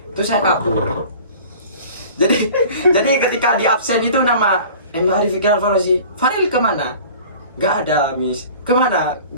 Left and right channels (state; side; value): inverted; both; correlation -0.44